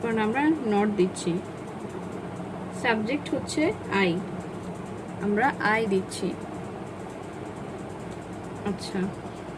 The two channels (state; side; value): identical; both; correlation 1.00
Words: কারণে আমরা নট দিচ্ছি। সাবজেক্ট হচ্ছে আই, আমরা আই দিচ্ছি। আচ্ছা,